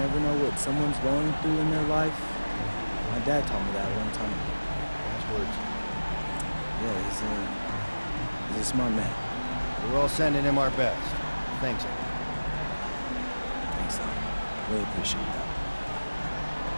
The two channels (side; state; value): both; inverted; correlation -1.00